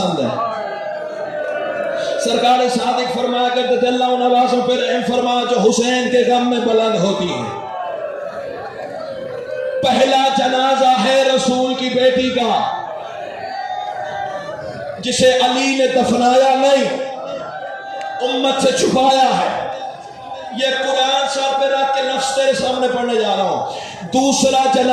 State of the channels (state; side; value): identical; both; correlation 1.00